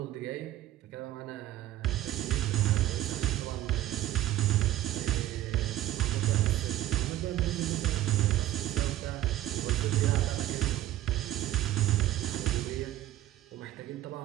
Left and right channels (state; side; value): quieter; left; 14.3 dB